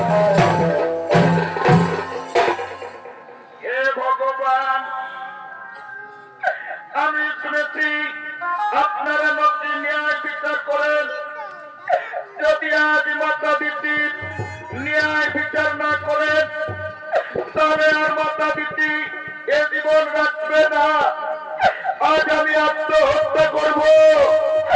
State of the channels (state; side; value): identical; both; correlation 1.00